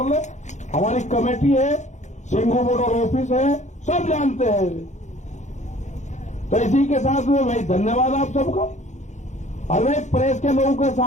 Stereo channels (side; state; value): right; late; 0.34 ms